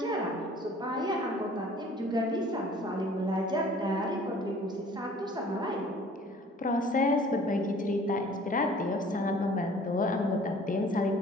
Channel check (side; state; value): both; normal; correlation 0.51